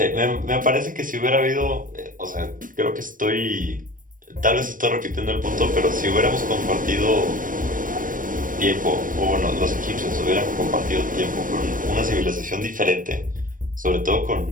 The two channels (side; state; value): left; late; 0.39 ms